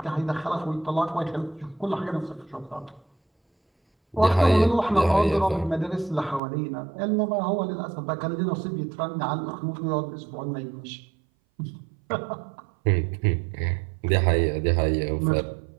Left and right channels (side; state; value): left; drops out; at 6.4 s